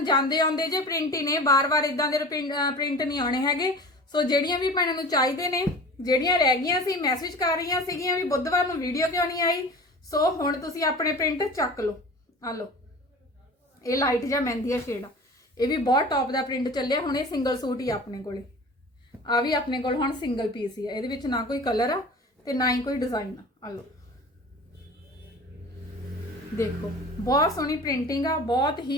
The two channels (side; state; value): both; normal; correlation 0.38